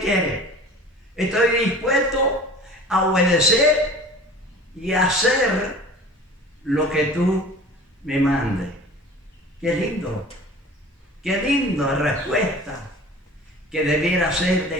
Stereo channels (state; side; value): normal; both; correlation 0.42